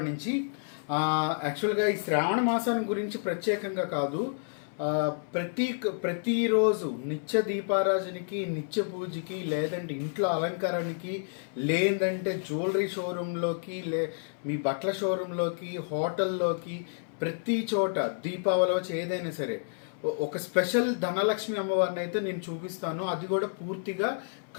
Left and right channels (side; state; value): right; silent; 57 dB below the other